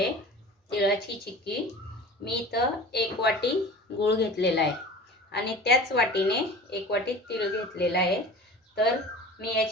तिळाची चिक्की. मी इथं 1 वाटी गूळ घेतलेला आहे आणि त्याच वाटीने 1 वाटी तीळ घेतलेला आहे. तर मी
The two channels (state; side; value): normal; both; correlation 0.38